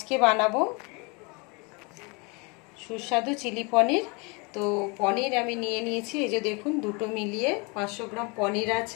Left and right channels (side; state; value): right; quieter; 29.9 dB